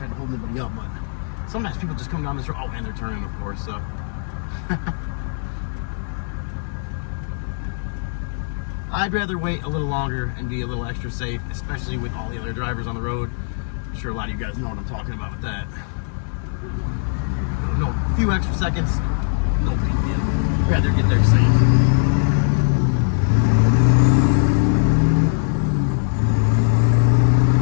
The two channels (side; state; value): right; silent; 56 dB below the other